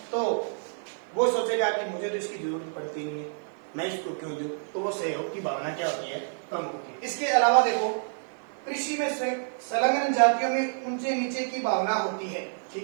तो वो सोचेगा कि मुझे तो इसकी जरूरत पड़ती नहीं है, मैं इसको क्यों दूं, तो वो सहयोग की भावना क्या होती है, कम होती है। इसके अलावा देखो, कृषि में संलग्न जातियों में ऊंचे नीचे की भावना होती है।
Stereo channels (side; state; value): left; silent; 59 dB below the other